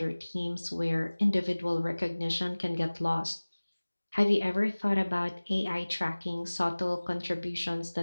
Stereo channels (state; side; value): inverted; both; correlation -1.00